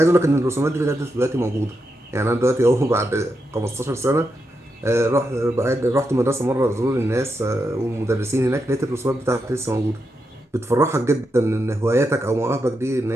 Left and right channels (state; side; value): normal; both; correlation 0.85